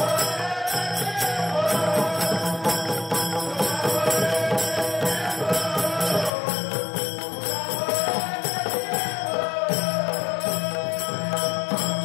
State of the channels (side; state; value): right; drops out; at 6.3 s